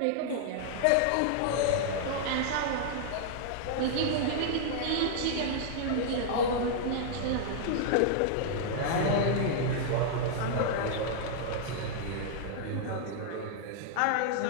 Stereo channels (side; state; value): both; different; correlation -0.01